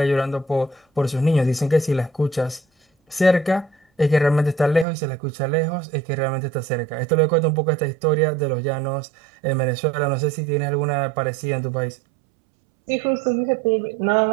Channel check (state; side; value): drops out; left; at 4.9 s